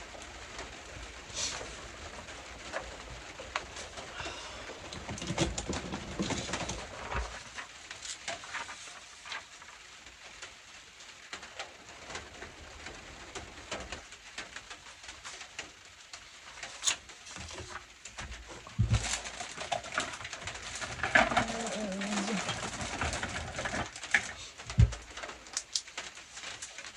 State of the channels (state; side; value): identical; both; correlation 1.00